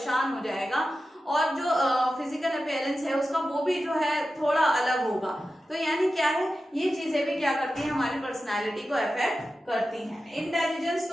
हो जाएगा, और जो फिजिकल अपीयरेंस है उसका वो भी जो है थोड़ा अलग होगा। तो यानी क्या है, ये चीजें भी क्या करती हैं, हमारी पर्सनालिटी को अफेक्ट करती हैं। इंटेलिजेंस,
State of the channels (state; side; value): normal; both; correlation 0.93